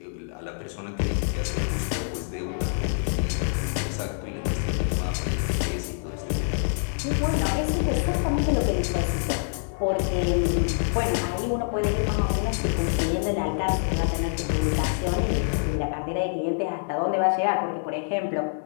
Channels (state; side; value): silent; right; digital silence